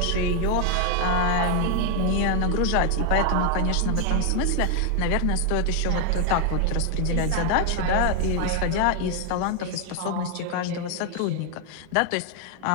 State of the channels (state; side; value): different; both; correlation 0.01